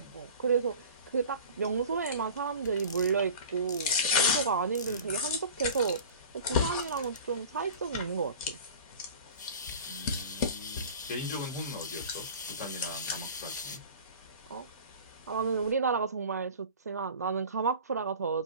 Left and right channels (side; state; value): both; inverted; correlation -0.38